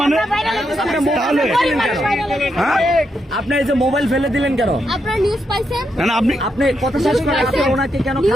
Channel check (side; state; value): both; normal; correlation 0.82